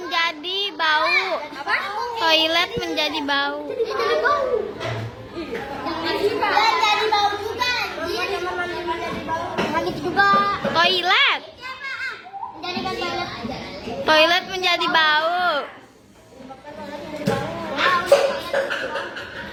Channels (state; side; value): identical; both; correlation 1.00